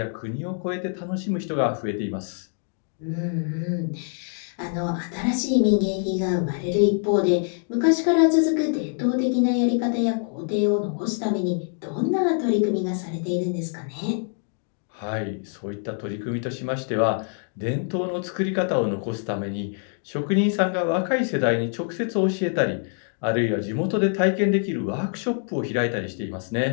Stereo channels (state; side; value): silent; right; 57 dB below the other